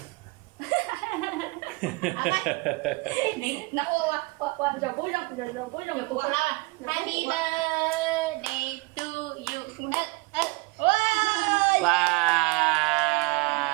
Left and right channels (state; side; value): quieter; left; 25.8 dB